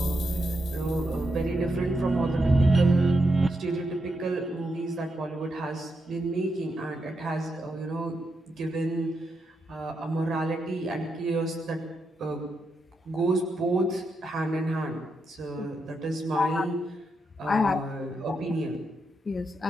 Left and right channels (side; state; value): both; normal; correlation 0.83